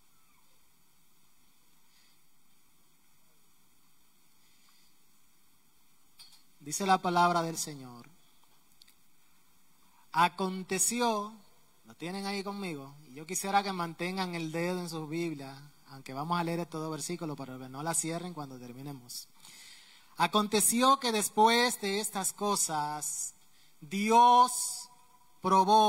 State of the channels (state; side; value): identical; both; correlation 1.00